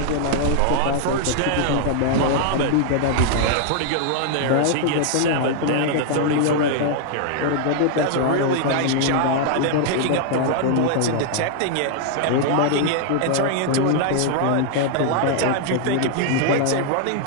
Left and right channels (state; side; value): different; both; correlation 0.00